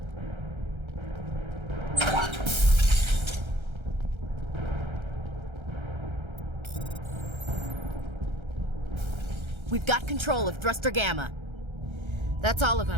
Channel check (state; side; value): late; left; 1.3 ms